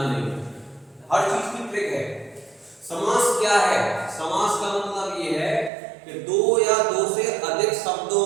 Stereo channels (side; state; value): left; drops out; at 5.7 s